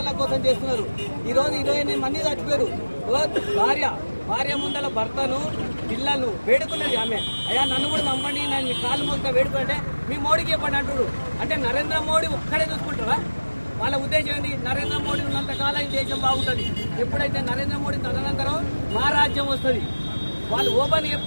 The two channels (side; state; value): both; inverted; correlation -1.00